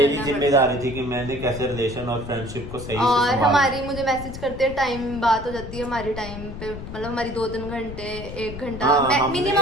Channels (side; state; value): left; noise; rumble, 10 dB below the sound